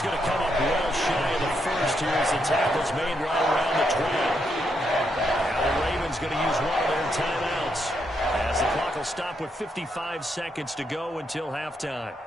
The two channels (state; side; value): normal; both; correlation 0.79